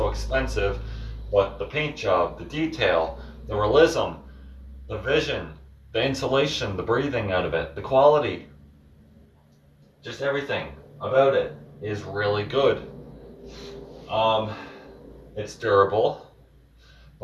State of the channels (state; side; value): identical; both; correlation 1.00